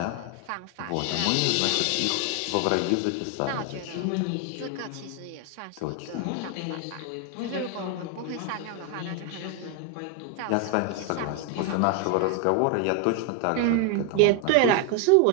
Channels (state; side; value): different; both; correlation 0.01